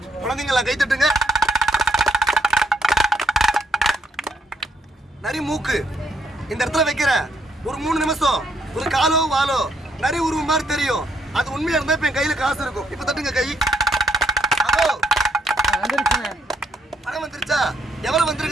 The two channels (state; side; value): normal; both; correlation 0.73